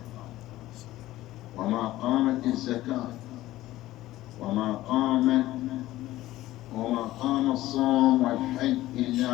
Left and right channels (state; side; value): quieter; right; 15.9 dB